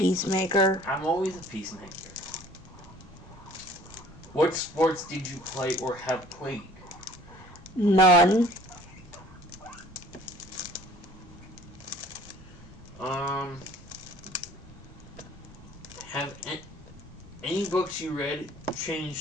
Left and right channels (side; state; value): both; normal; correlation 0.53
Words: I'm always a peacemaker. What sports did you play or have played? None. Have any books you read